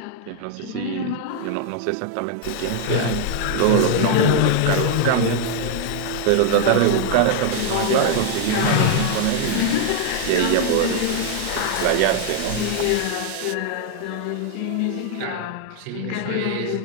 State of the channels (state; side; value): different; both; correlation 0.00